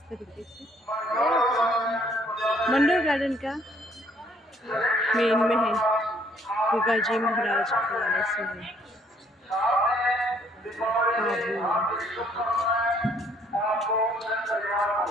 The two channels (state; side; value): normal; both; correlation 0.64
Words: तरीके से। मंडोर गार्डन का मेन में है, गुगा जी महाराज वाले से है।